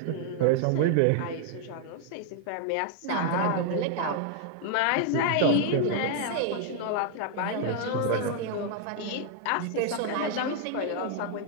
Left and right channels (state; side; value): different; both; correlation 0.00